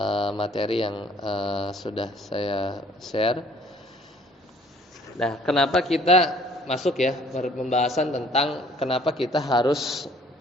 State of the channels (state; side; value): normal; both; correlation 0.57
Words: materi yang sudah saya share. Nah, kenapa kita masuk, ya, pembahasan tentang kenapa kita harus